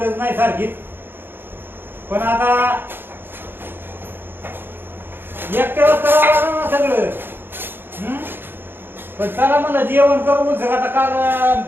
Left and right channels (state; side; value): late; left; 0.10 ms